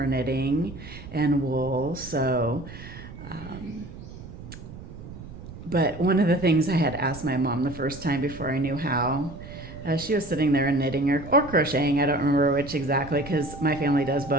knitting and wool. So, but one of the things I had asked my mom the first time before I knew how, she was sitting there and knitting or crocheting. I don't remember which exactly because my family does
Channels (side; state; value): right; noise; rumble, 14 dB below the sound